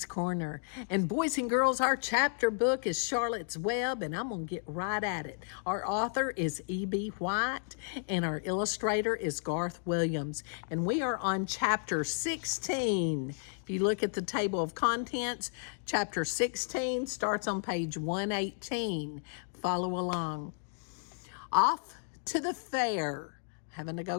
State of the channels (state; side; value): silent; right; digital silence